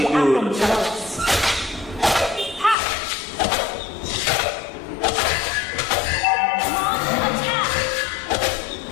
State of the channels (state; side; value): drops out; right; at 2.8 s